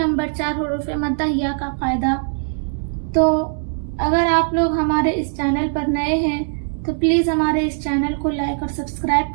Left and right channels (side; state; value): left; silent; digital silence